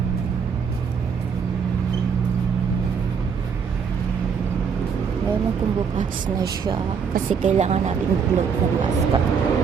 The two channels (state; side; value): quieter; left; 6.4 dB